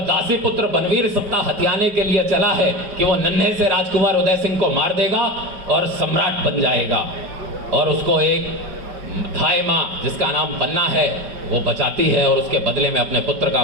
पुत्र बनवीर सत्ता हथियाने के लिए चला है कि वो नन्हे से राजकुमार उदय सिंह को मार देगा और सम्राट बन जाएगा, और उसको एक थाई माँ जिसका नाम पन्ना है वो बचाती है और उसके बदले में अपने पुत्र का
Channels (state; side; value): late; left; 5.2 ms